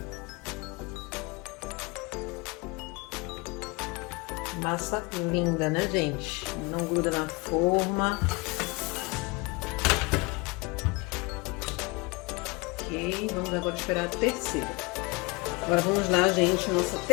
Massa linda, né, gente? Não gruda na forma. Ok, vamos agora esperar a terceira. Agora vamos lá, gente, nossa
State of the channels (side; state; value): right; quieter; 26.6 dB